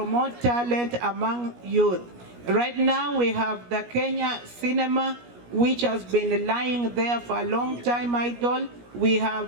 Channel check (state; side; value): late; left; 17 ms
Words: talent among youth. Right now we have the Kenya cinema, which has been lying there for a long time idle. We